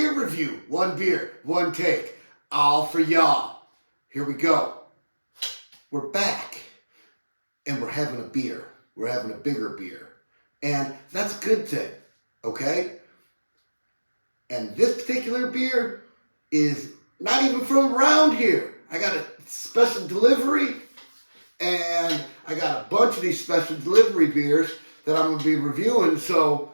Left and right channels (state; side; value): inverted; both; correlation -1.00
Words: Review. One beer, one take, all for y'all. Here we go. We're back, and we're having a beer. We're having a bigger beer. And that's a good thing, okay? And this particular beer is not even from around here. I got a special delivery, and I got a bunch of these special delivery beers that I'm going to be reviewing. So,